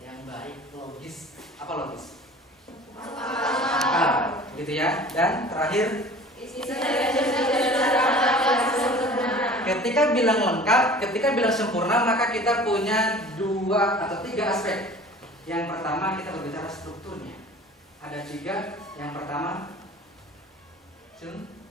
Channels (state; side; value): normal; both; correlation 0.44